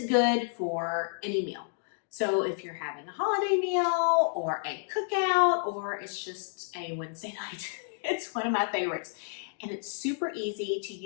good for any meal. So if you're having a holiday meal or a cookout or it's just a Wednesday night, it's one of my favorites. And it's super easy to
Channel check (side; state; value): right; silent; digital silence